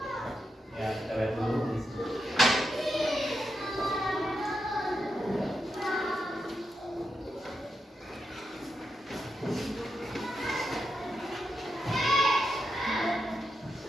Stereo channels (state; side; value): normal; both; correlation 0.86